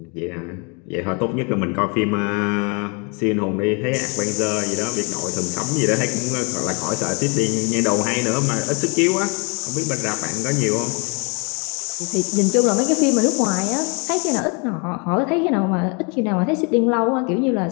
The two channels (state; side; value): quieter; right; 33.8 dB